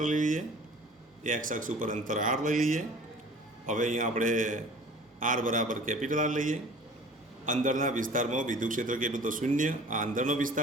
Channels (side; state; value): both; normal; correlation 0.46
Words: લઈ લઈએ, x અક્ષ ઉપર અંતર r લઈ લઈએ. હવે અહીંયા આપણે r બરાબર કેપિટલ R લઈએ અંદરના વિસ્તારમાં વિદ્યુત ક્ષેત્ર કેટલું તો શૂન્ય. આ અંદરનો